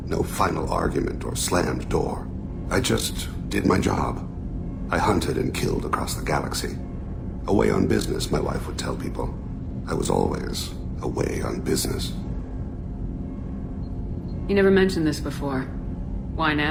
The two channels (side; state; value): both; identical; correlation 1.00